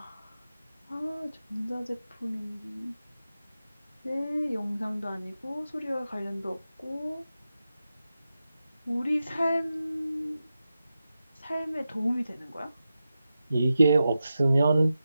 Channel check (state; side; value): inverted; both; correlation -0.91